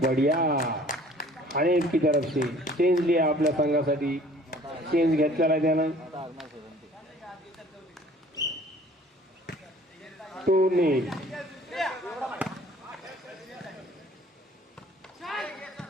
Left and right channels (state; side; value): normal; both; correlation 0.53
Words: आणि की तरफ से चेंज लिया आपल्या संघासाठी. चेंज घेतलेला आहे त्यानं. 2-0.